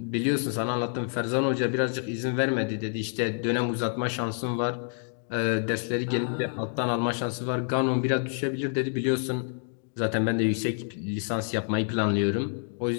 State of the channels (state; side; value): silent; right; 57 dB below the other